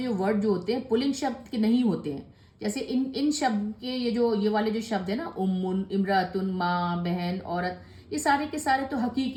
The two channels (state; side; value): identical; both; correlation 1.00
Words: वर्ड जो होते हैं पुलिंग शब्द के नहीं होते हैं, जैसे इन शब्द के ये वाले जो शब्द है ना, उम्मुन, इमरातुन, माँ, बहन, औरत, ये सारे के सारे तो